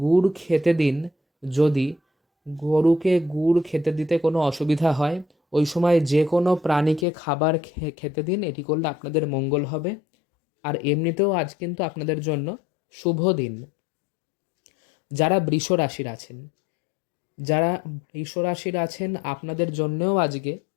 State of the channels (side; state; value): right; drops out; at 7.1 s